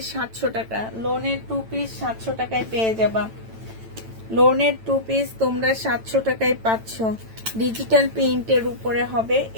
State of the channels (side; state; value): left; late; 9.0 ms